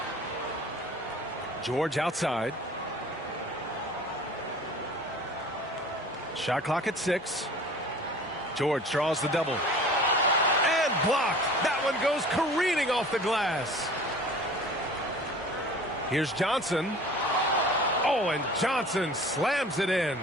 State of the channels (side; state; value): both; normal; correlation 0.44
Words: George outside. Shot clock at 6. George draws the double. And blocked. That one goes careening off the glass. Here's Johnson. Oh, and Johnson slams it in.